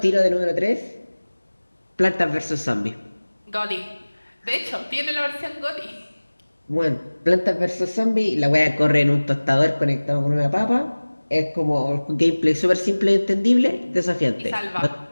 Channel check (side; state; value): both; inverted; correlation -1.00